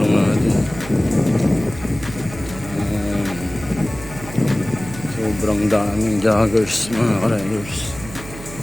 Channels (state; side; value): noise; right; hum, 14 dB below the sound